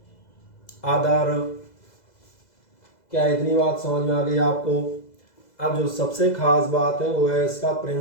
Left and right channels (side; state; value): right; late; 2.0 ms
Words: other। क्या इतनी बात समझ में आ गई आपको? अब जो सबसे खास बात है वो है इसका